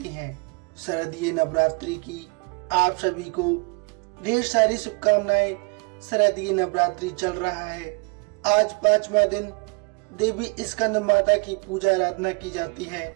हैं। शारदीय नवरात्रि की आप सभी को ढेर सारी शुभकामनाएं। शारदीय नवरात्रि चल रहा है। आज 5वां दिन देवी स्कंद माता की पूजा आराधना की जाती है।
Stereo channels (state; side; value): quieter; left; 32.4 dB